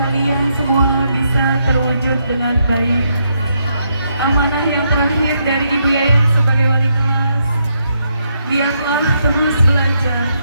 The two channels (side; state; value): both; inverted; correlation -0.78